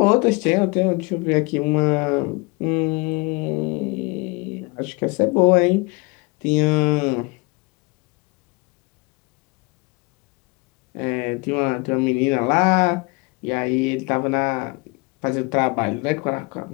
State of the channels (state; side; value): quieter; right; 27.4 dB